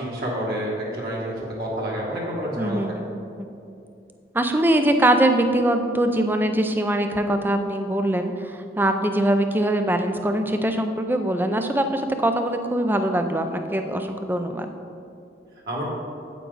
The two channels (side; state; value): both; normal; correlation 0.68